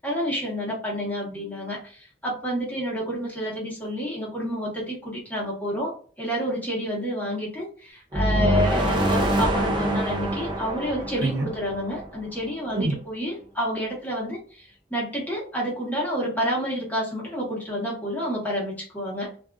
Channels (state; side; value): normal; both; correlation 0.41